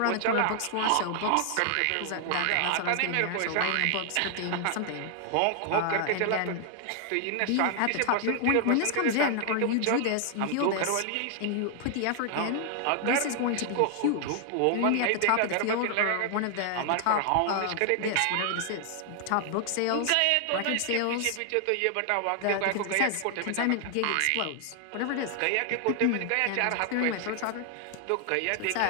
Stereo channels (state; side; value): different; both; correlation 0.00